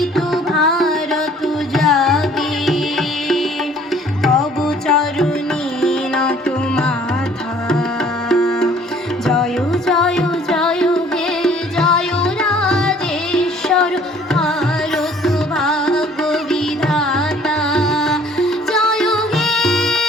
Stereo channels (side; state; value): both; normal; correlation 0.55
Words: ভারত জাগে তব চরণে নত মাথা জয় জয় জয় হে জয় রাজেশ্বর ভারত ভাগ্য বিধাতা জয় হে